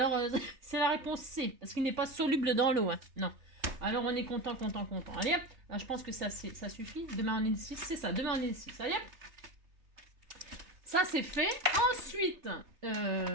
c'est la réponse C, parce qu'il n'est pas soluble dans l'eau. Hein. Non. Alors, on est content. Allez, hop. Là, je pense que ça suffit. Demain, on est le 6. C'est ça, demain, on est le 6. Allez, hop. Ça, c'est fait. Ensuite,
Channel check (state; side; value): late; left; 3.3 ms